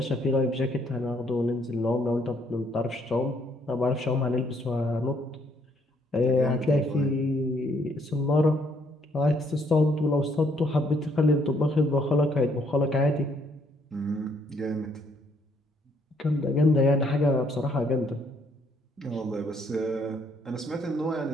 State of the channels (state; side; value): normal; both; correlation 0.68